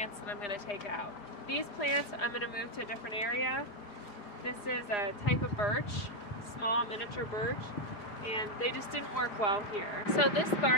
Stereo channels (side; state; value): right; late; 4.9 ms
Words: that I'm going to take out. These plants I'm going to move to a different area. This is a type of birch, small miniature birch, and they just didn't work well here. So this